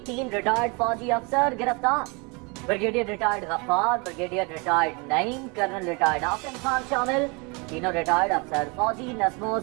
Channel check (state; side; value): quieter; left; 30.0 dB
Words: 3 ریٹائرڈ فوجی افسر گرفتار۔ بریگیڈیئر ریٹائرڈ غفار، بریگیڈیئر ریٹائرڈ نعیم، کرنل ریٹائرڈ آصم خان شامل۔ تینوں ریٹائرڈ افسر فوجی نظم و